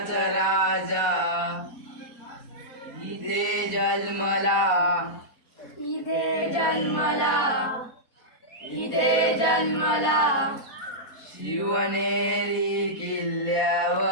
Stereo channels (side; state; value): right; late; 4.2 ms